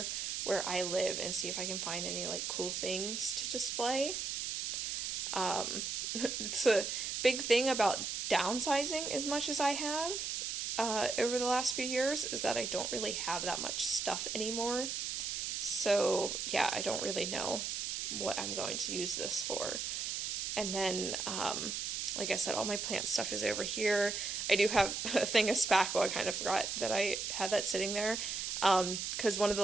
where I live and see if I can find any like cool things to display. It's a big thing about downsizing as much as I have over the last few years, is that I don't really have that much stuff anymore. So yeah, I don't really know what I'm going to use this for. And then, like I said, all my plant stuff is over here. I do have a thing of spackle. I kind of forgot that I had that sitting there. Because one of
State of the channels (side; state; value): right; noise; hiss, 2 dB below the sound